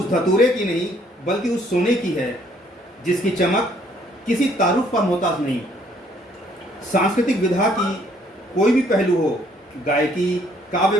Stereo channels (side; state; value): both; normal; correlation 0.64